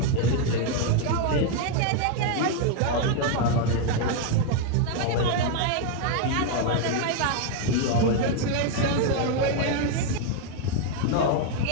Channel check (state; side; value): different; both; correlation 0.01